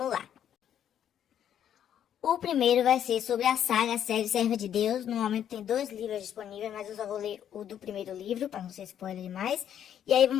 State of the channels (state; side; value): quieter; right; 9.8 dB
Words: lá. O primeiro vai ser sobre a série Serva de Deus. No momento tem 2 livros disponíveis, mas eu só vou ler o do primeiro livro, para não ser spoiler demais. E aí